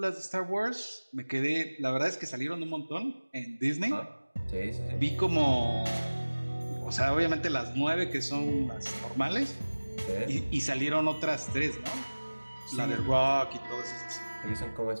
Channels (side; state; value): both; inverted; correlation -1.00